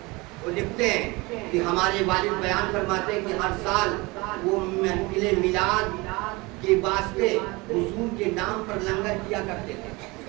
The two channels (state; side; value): quieter; left; 24.4 dB